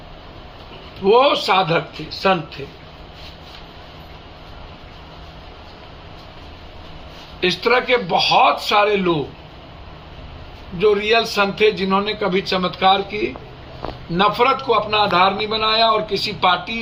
वो साधक थे, संत थे। इस तरह के बहुत सारे लोग जो रियल संत थे, जिन्होंने कभी चमत्कार की नफरत को अपना आधार नहीं बनाया और किसी पार्टी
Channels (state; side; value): identical; both; correlation 1.00